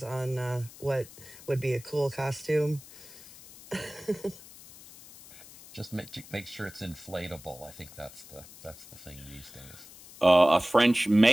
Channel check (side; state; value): left; noise; hiss, 19 dB below the sound